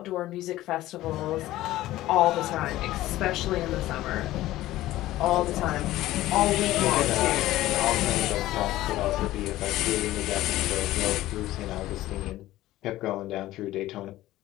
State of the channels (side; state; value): right; quieter; 15.8 dB